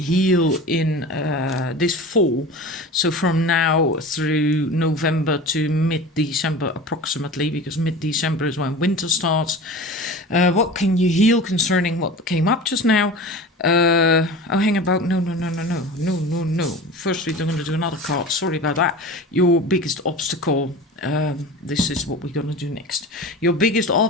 in this fall? So from now through November to mid-December approximately, because mid-December is when winter starts. What can you heal concerning what came up just now? Hang about. No. First, we're going to do another card. Sorry about that. Your biggest obstacle. This is what we're going to do next. Your biggest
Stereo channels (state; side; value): normal; both; correlation 0.34